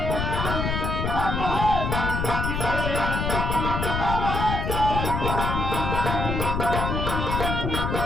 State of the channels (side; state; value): left; noise; rumble, 1 dB below the sound